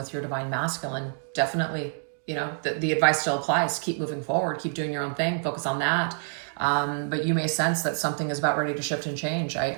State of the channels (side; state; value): left; silent; digital silence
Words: your divine masculine. Definitely, you know, the advice still applies. Keep moving forward. Keep doing your own thing. Focus on that. But you may sense that something is about ready to shift and change.